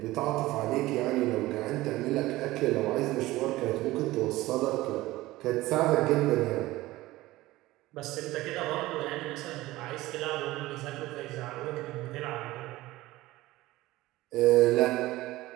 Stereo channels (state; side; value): quieter; left; 17.9 dB